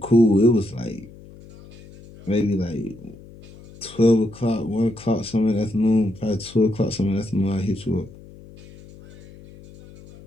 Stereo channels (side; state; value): left; noise; hum, 20 dB below the sound